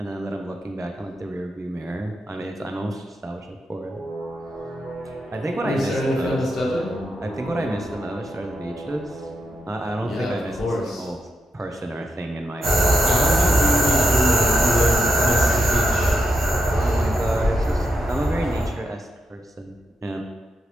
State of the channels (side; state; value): both; normal; correlation 0.83